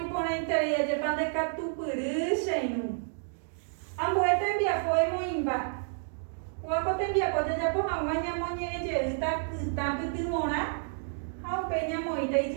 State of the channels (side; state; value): left; silent; digital silence